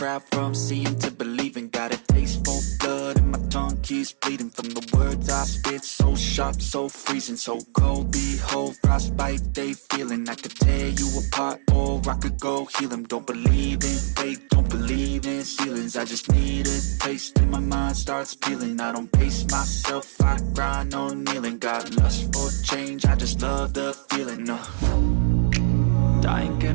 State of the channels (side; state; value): left; silent; digital silence